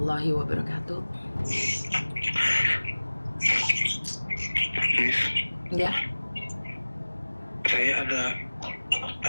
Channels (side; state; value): both; inverted; correlation -1.00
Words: wabarakatuh. Miss, Ya, saya ada